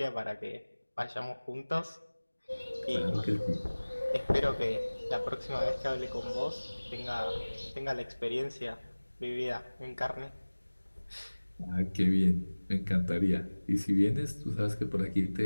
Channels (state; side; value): inverted; both; correlation -1.00